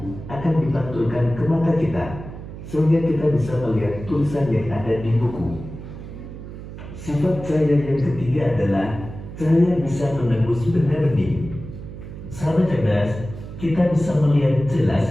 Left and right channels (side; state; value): right; noise; hum, 12 dB below the sound